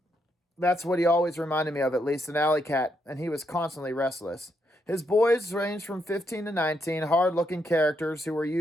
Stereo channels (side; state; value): both; normal; correlation 0.78